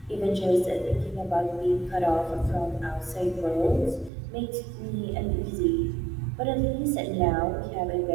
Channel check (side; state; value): left; drops out; at 4.1 s